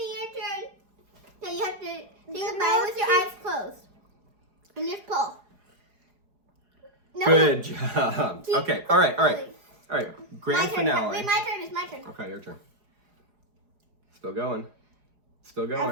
your turn. So you have to take a bite with your eyes closed. And just pull. No. Good job. Keep Okay, all right. pulling. All right, grand My turn. finale. Wait, my turn. It's my turn. Okay, your turn. Still going. Still I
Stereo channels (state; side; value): late; left; 4.8 ms